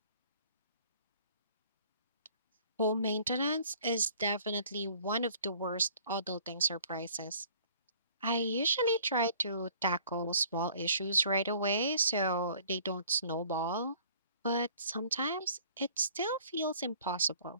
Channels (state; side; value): inverted; both; correlation -0.54